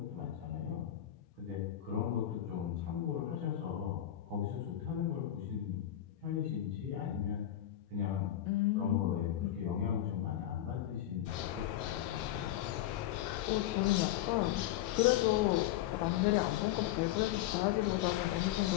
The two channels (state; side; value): quieter; right; 12.7 dB